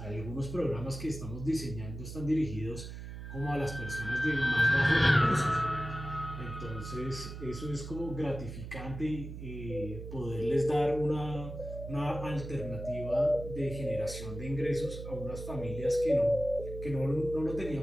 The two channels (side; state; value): right; noise; hum, 9 dB below the sound